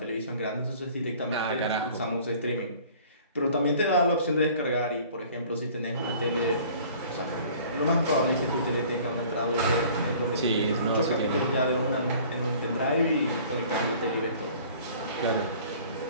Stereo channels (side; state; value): both; inverted; correlation -0.50